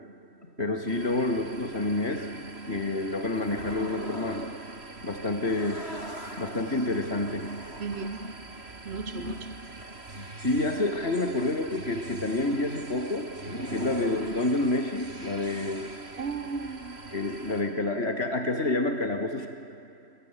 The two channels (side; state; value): left; late; 3.1 ms